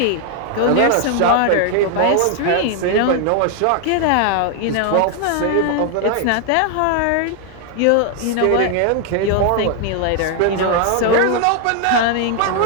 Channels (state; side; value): different; both; correlation 0.00